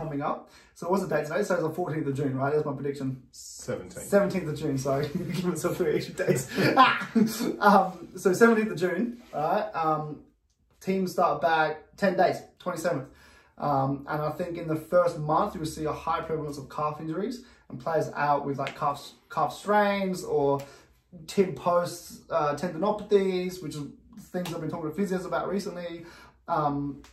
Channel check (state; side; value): identical; both; correlation 1.00